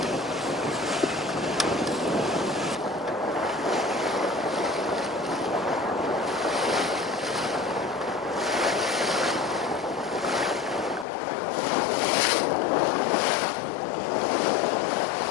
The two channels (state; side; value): drops out; right; at 11.1 s